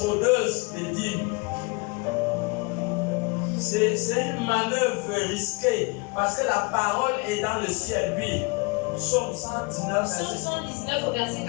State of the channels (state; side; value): quieter; right; 29.1 dB